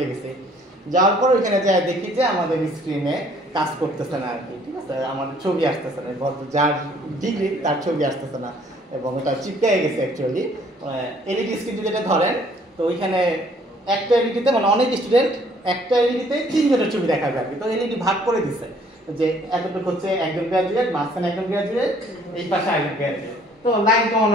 গেছে। যাওয়ার পর ওইখানে যাই দেখি যে আমাদের স্ক্রিনে কাজ করতেছে না আর কি, ঠিক আছে, আমাদের ছবি আসতেছে না, যার ডিগ্রি তার ছবি আসতেছে না, এবং ওটা চিপকাই গেছে অ্যাকচুয়ালি। এলইডি স্ক্রিন যেটা ধরেন, তো ওইখানে একটা এলইডিতে মানে অনেক স্টুডেন্ট একটা এলইডিতে 3 জনের ছবি দেখা যায়। তো এলইডি ভাগ করে দিছে, যে এতটুকু হচ্ছে একজন গ্র্যাজুয়েট, মাঝখানে একজন গ্র্যাজুয়েট, এই পাশে আরেকজন গ্র্যাজুয়েট। তো লাইন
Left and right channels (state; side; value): normal; both; correlation 0.60